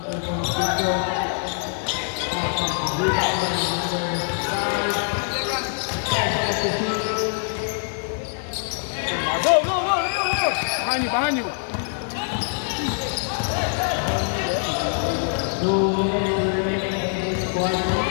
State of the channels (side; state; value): right; silent; 63 dB below the other